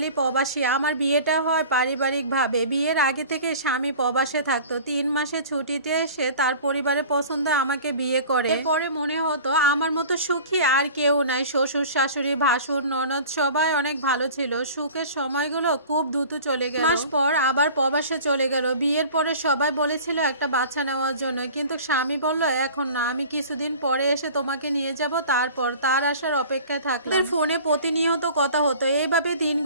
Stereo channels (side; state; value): both; inverted; correlation -0.42